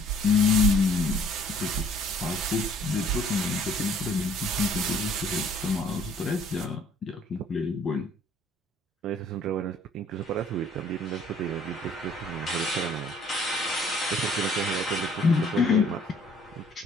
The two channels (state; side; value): normal; both; correlation 0.58